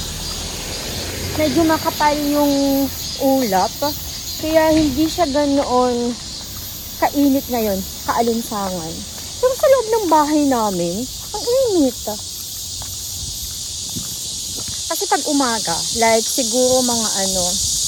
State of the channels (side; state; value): both; identical; correlation 1.00